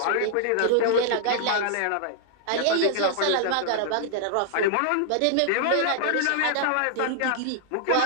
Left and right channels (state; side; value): different; both; correlation -0.01